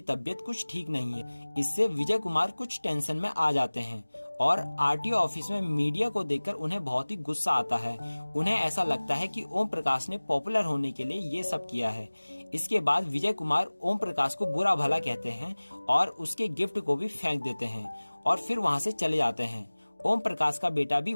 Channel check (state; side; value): inverted; both; correlation -1.00